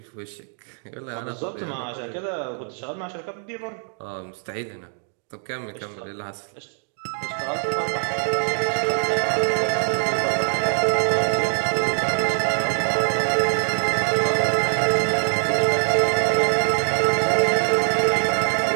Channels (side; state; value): left; silent; 55 dB below the other